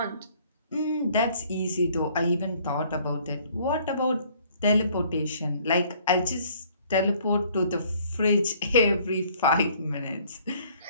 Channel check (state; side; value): inverted; both; correlation -0.59